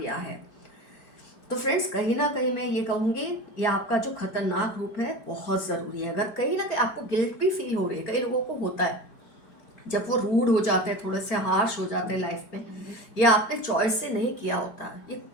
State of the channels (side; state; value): right; late; 4.4 ms